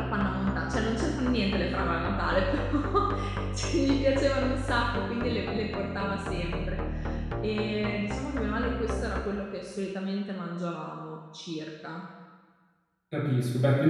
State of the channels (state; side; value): identical; both; correlation 1.00